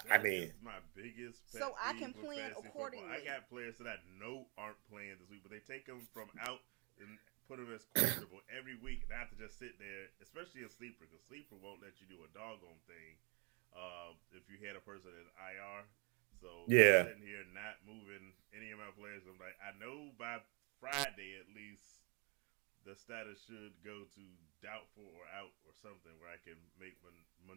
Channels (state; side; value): quieter; left; 36.2 dB